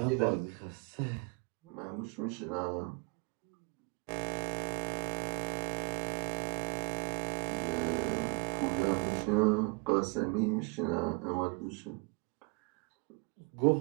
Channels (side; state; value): left; quieter; 30.2 dB